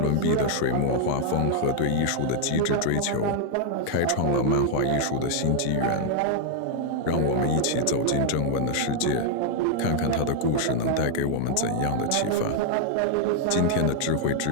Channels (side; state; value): both; different; correlation 0.00